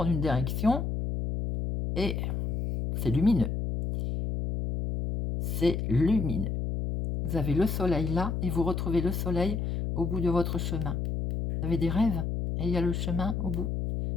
une direction et c'est lumineux. C'est lumineux. Vous avez le soleil là et vous retrouvez le soleil au bout de votre chemin. Vous avez des rêves et il y a le chemin au bout,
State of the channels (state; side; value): noise; left; hum, 2 dB below the sound